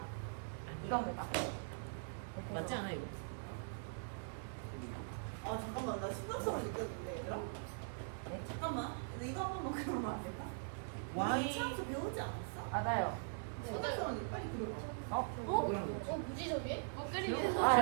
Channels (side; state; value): left; silent; digital silence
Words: 이겁니다. 맞지 않아 이거? 아 잠깐만 나 신경성을 느꼈는데 얘들아. 네? 잠깐만. 근데 이거 한 번만 그려보면 안 될까? Y. 이창수 배우지 않았어? 맞아요. 신경성을 빨리 그려봐. 어? 뭐라는 거지? 뭐지 저게? 뭐 아,